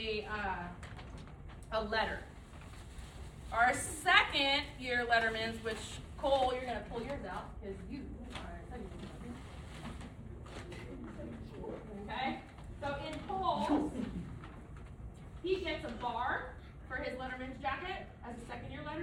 letter. Our second year lettermans, which Cole, you're gonna pull yours out because you are second year. Okay, so in Cole's, he gets a bar for his letterman's jacket as a second year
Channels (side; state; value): both; identical; correlation 1.00